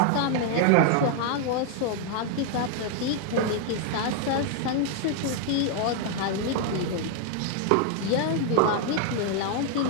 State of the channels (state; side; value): different; both; correlation 0.00